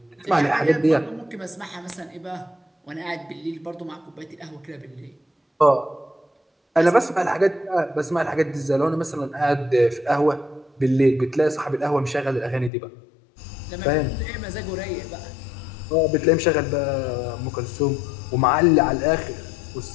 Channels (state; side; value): drops out; right; at 12.7 s